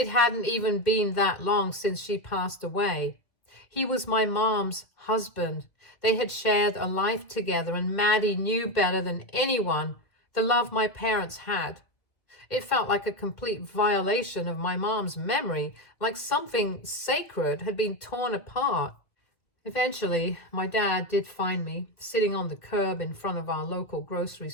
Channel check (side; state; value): right; late; 2.0 ms